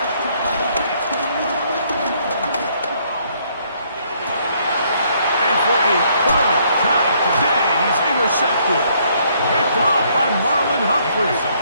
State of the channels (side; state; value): both; inverted; correlation -0.68